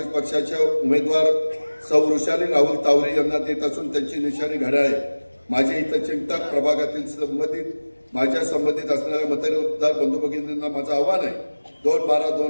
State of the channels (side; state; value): both; inverted; correlation -1.00